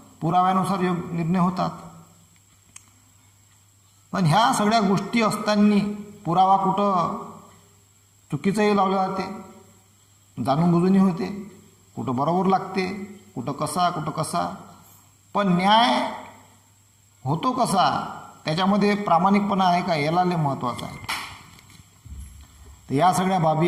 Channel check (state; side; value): identical; both; correlation 1.00